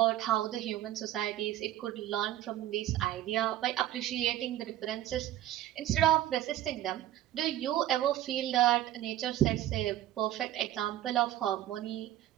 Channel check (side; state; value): left; quieter; 13.5 dB